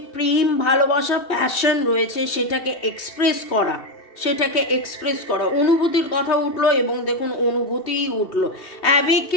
প্রেম, ভালোবাসা, প্যাশন রয়েছে সেটাকে এক্সপ্রেস করা, অনুভূতির কথা উঠলো এবং দেখুন অনুভূতিই উঠলো,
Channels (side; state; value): right; late; 2.7 ms